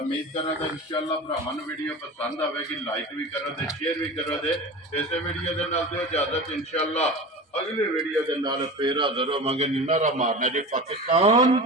ਕਰਾਂ ਕਿ ਇਨਸ਼ਾਅੱਲਾ ਭਰਾਵਾਂ ਨੂੰ ਵੀਡੀਓ ਪਸੰਦ ਆਵੇਗੀ। ਲਾਈਕ ਵੀ ਕਰੋ ਤੇ ਸ਼ੇਅਰ ਵੀ ਕਰੋ ਤੇ ਇਸੇ ਵੀਡੀਓ ਦੇ ਨਾਲ ਦਿਓ ਇਜਾਜ਼ਤ। ਇਨਸ਼ਾਅੱਲਾ ਅਗਲੀ ਵੀਡੀਓ ਦੇ ਨਾਲ ਫੇਰ ਹਾਜ਼ਰ ਹੋਵਾਂਗੇ। ਨਾਰਾ ਮਾਰਨਾ ਜੀ ਪਾਕਿਸਤਾਨ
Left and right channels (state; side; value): normal; both; correlation 0.31